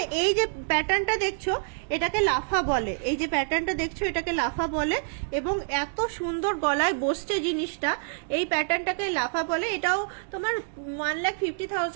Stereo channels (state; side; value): silent; left; digital silence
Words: এই যে প্যাটার্নটা দেখছো এটাকে লাফা বলে, এই যে প্যাটার্নটা দেখছো এটাকে লাফা বলে এবং এত সুন্দর গলায় বসছে জিনিসটা, এই প্যাটার্নটাকে লাফা বলে। এটাও তোমার